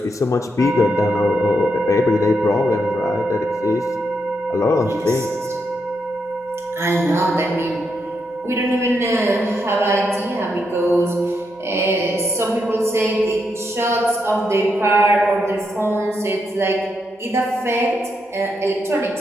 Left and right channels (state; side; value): normal; both; correlation 0.81